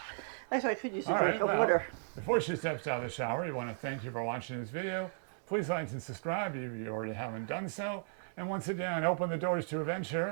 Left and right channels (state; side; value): silent; left; digital silence